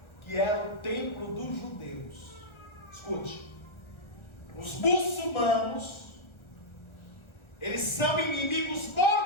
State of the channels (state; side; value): late; right; 1.3 ms